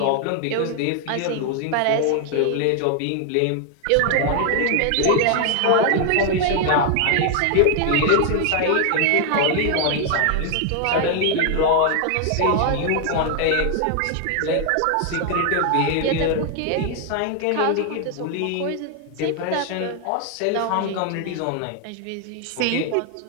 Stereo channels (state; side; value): different; both; correlation 0.00